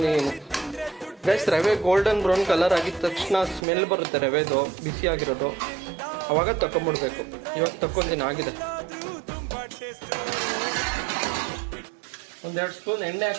ಗೈಸ್ ರವೆ ಗೋಲ್ಡನ್ ಬ್ರೌನ್ ಕಲರ್ ಆಗಿದ ತಕ್ಷಣ ಸ್ಮೆಲ್ ಬರುತ್ತೆ ರವೆದು, ಬಿಸಿಯಾಗಿರೋದು, ಅವಾಗ ತಗೊಂಬಿಡ್ಬೇಕು. ಇವಾಗ ತಗೊಂತೀನಿ, ಆಗಿದೆ. 1-2 ಸ್ಪೂನ್ ಎಣ್ಣೆ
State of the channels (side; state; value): left; drops out; at 3.6 s